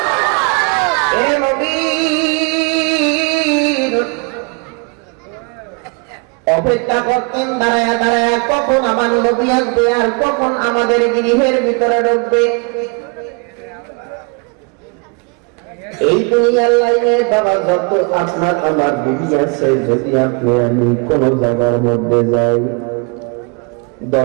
অপেক্ষা করতেন দাঁড়ায়া দাঁড়ায়া, কখন আমার নবী আসবে আর কখন আমাদের গৃহের ভিতরে ঢুকবে। এই দুনিয়ার লাইনে বাবা যত আপনার আমার বিবি আছে, যদি আপনি আমি কোন জায়গার মধ্যে যাই,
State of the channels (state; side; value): quieter; left; 33.4 dB